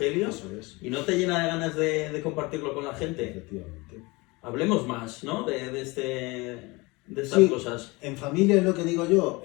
eso es. Y no te llena de ganas de compartirlo con la gente. Efectivamente. Hablemos más, ¿no? De estas sí, cosas. En familia es lo que digo yo.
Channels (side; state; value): right; quieter; 24.4 dB